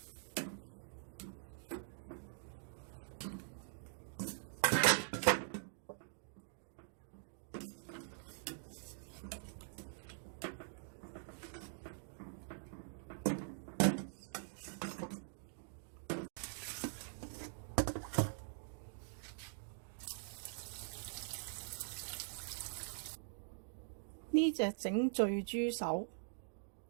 呢隻整醉豬手，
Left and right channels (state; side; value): silent; left; digital silence